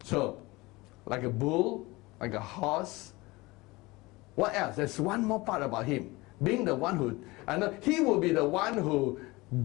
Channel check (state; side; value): quieter; right; 22.2 dB